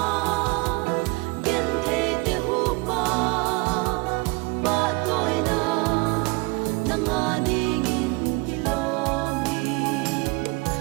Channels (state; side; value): quieter; left; 25.8 dB